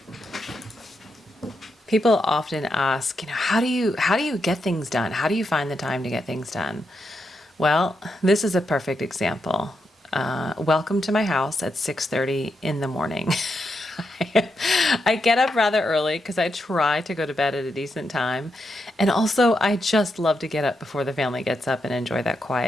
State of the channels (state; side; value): normal; both; correlation 0.84